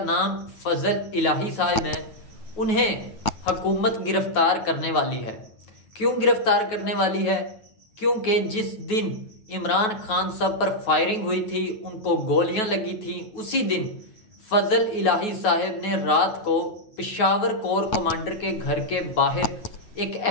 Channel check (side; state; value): right; late; 9.3 ms